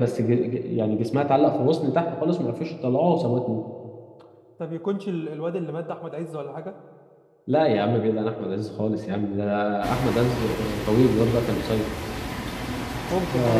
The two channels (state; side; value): identical; both; correlation 1.00